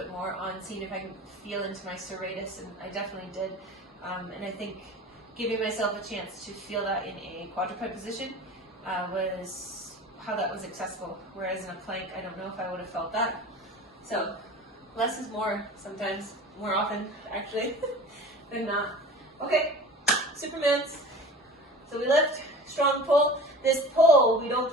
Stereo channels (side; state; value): both; normal; correlation 0.38